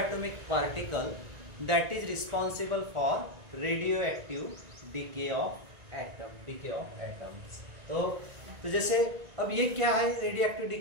particle that is responsible for radioactive decay of atom. Decay of atoms. तो जैसे अब ये क्या है रेडियोएक्टिव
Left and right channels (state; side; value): late; left; 1.9 ms